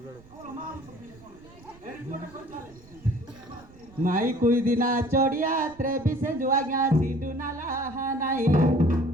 ମାଇ କୁଇ ଦିନା ଚଢ଼ିଆ ତ୍ରେବି ସେ ଯୋ ଆଜ୍ଞା ସିଣ୍ଡୁ ନାଲା ନାହିଁ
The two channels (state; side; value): noise; right; rumble, 24 dB below the sound